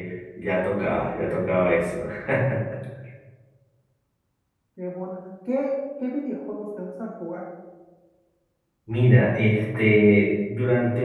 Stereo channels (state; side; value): identical; both; correlation 1.00